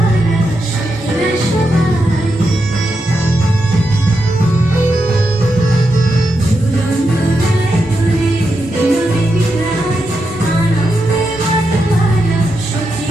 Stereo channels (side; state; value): both; normal; correlation 0.85